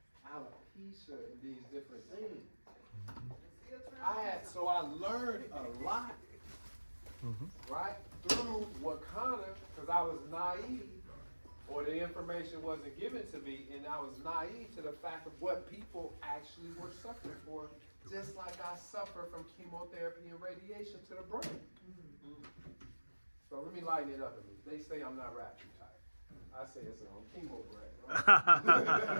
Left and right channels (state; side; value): inverted; both; correlation -1.00